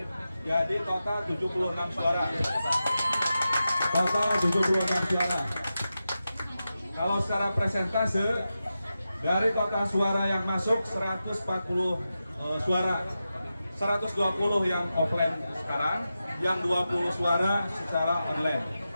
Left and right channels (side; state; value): both; inverted; correlation -0.91